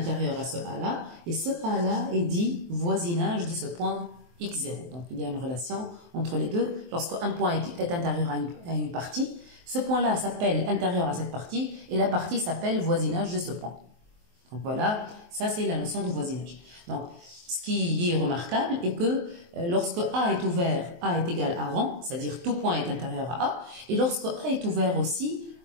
à ce A-là et ce A-là est dit voisinage de ce point x0. Donc, il y a une relation entre les deux. Lorsqu'un point est intérieur à une partie, ce point-là s'appelle intérieur à cette partie et la partie s'appelle voisinage de ce point. Donc, voilà, ça c'est la notion de voisinage. Donc, ce qui est remarquable est que lorsque A est ouvert, A est égal à rang, c'est-à-dire tout point est intérieur à A, et lorsque A est ouvert aussi,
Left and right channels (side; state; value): left; late; 23 ms